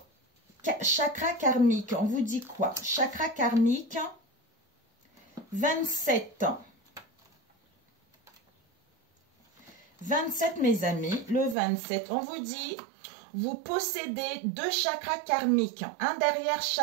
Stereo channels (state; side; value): drops out; left; at 11.6 s